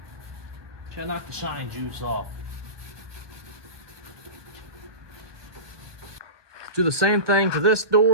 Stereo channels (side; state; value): left; late; 1.2 ms